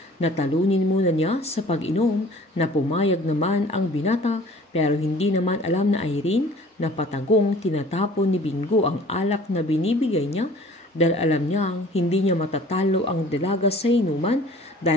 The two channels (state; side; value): normal; both; correlation 0.49